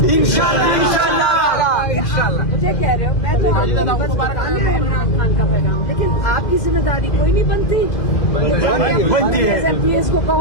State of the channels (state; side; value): late; right; 2.0 ms